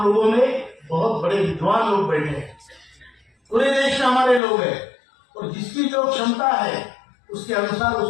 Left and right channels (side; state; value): right; drops out; at 4.4 s